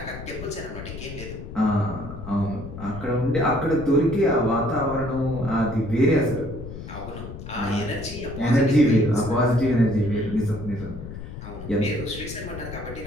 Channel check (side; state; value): left; noise; rumble, 11 dB below the sound